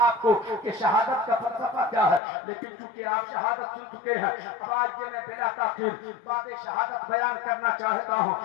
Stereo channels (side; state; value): right; drops out; at 2.2 s